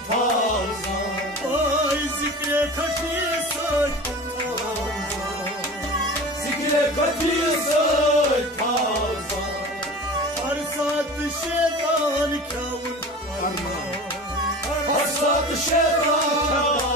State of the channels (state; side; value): normal; both; correlation 0.35